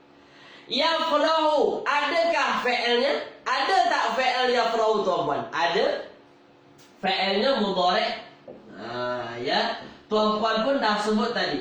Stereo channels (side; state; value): both; identical; correlation 1.00